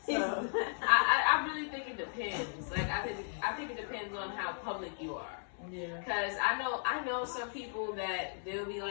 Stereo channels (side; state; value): right; silent; digital silence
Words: So. I really think it depends. Like I think it depends on how public you are. Yeah. Cause I know some people that they'll be